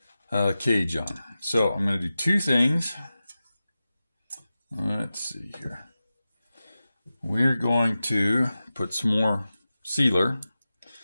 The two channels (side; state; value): both; inverted; correlation -0.94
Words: cage on. So I'm going to do 2 things. Let's see here. We're going to put some more sealer